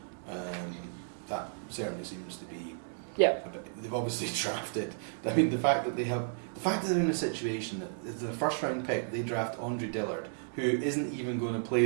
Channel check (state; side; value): silent; left; digital silence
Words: That certainly seems to be. Yeah. They've obviously drafted. I mean, the fact that they're in a situation that it's their first round pick, they draft Andre Dillard, who isn't even going to play